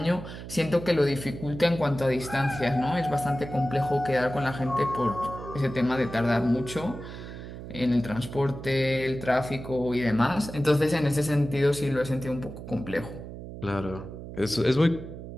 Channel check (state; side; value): noise; right; hum, 11 dB below the sound